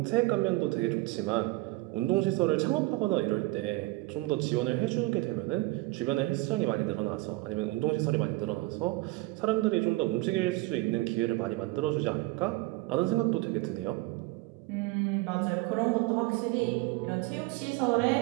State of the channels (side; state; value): left; quieter; 21.2 dB